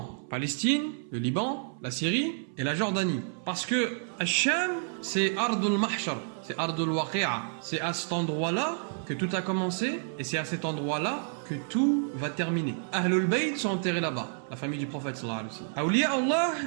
Palestine, le Liban, la Syrie et la Jordanie. Parce que Sham, c'est Ardul Mahshar, c'est Ardul Waqi'a. C'est à cet endroit-là que tout a commencé et c'est à cet endroit-là que tout va terminer. Ahlul Bayt sont enterrés là-bas, la famille du prophète sallallahu alayhi wa sallam. Awliya Allah,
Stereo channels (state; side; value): silent; left; 58 dB below the other